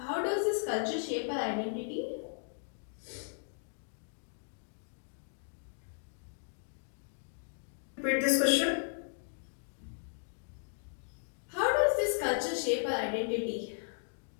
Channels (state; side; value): silent; right; digital silence